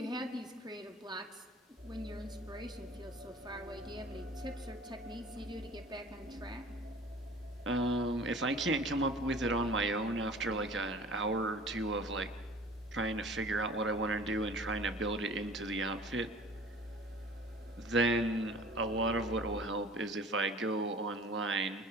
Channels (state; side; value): normal; both; correlation 0.46